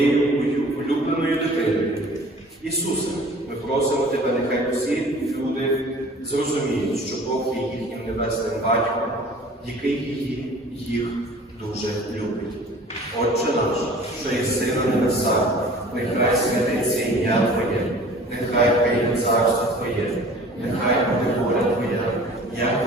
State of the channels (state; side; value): normal; both; correlation 0.46